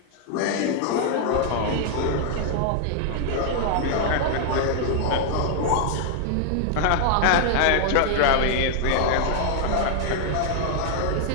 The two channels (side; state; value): both; different; correlation 0.00